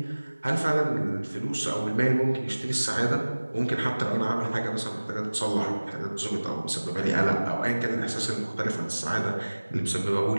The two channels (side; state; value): both; inverted; correlation -1.00